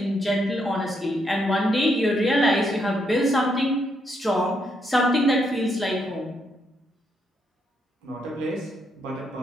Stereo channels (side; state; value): both; normal; correlation 0.77